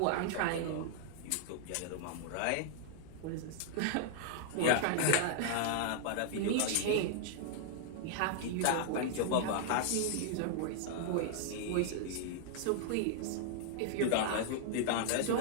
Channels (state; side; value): different; both; correlation -0.01